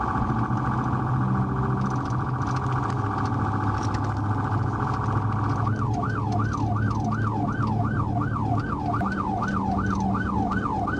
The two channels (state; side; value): identical; both; correlation 1.00